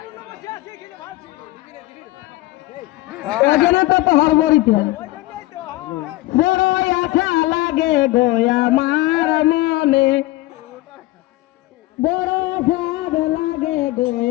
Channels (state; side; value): quieter; right; 18.7 dB